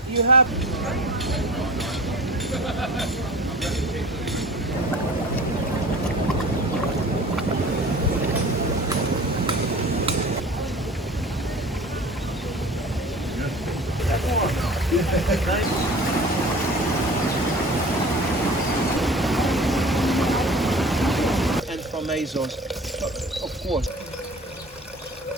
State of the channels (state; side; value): normal; both; correlation 0.40